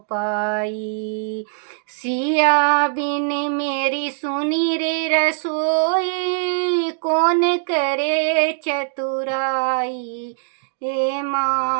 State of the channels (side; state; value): left; silent; digital silence